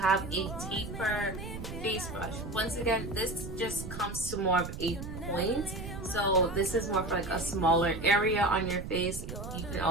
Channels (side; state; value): right; noise; rumble, 8 dB below the sound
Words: a taper face brush. Once again, this just comes to more of a point. So this is more for like a smaller area on your face. You can